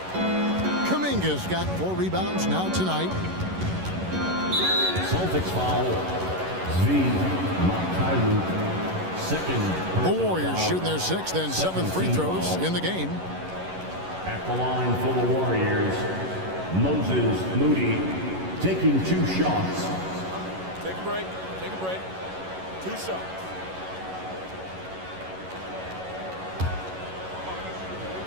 Kuminga's got 4 rebounds now tonight. Celtics foul. Second. The Warriors shooting their 6th and 7th free throws in the game. At the line for the Warriors, Moses Moody taking 2 shots. Take a break. Take a break. 2 shots.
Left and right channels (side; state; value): left; late; 11 ms